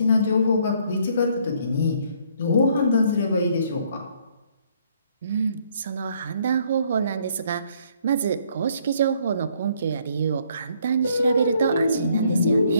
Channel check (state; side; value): inverted; both; correlation -0.66